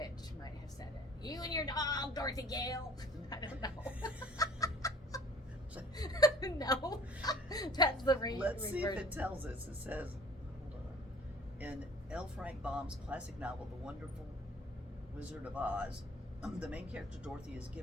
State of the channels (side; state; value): both; normal; correlation 0.51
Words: might have said it. You and your dog, Dorothy Gale. I don't know. No. That's the Let's see if reversion. it tells us. It says, hold on. In L. Frank Baum's classic novel, The Wonderful Wizard of Oz, the main character Dorothy is